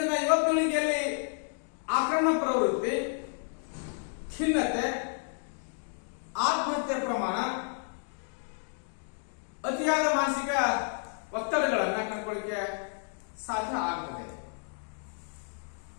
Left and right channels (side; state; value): right; silent; 57 dB below the other